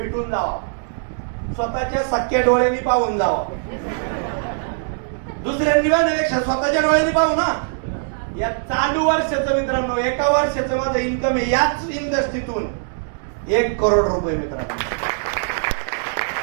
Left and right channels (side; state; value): left; silent; digital silence